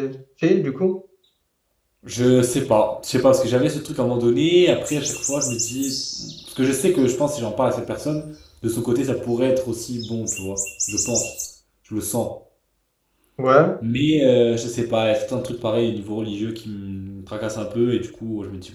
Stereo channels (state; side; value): identical; both; correlation 1.00